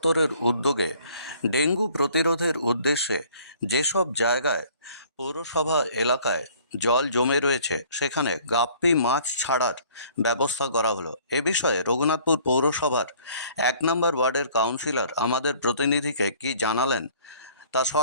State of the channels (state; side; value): inverted; both; correlation -0.55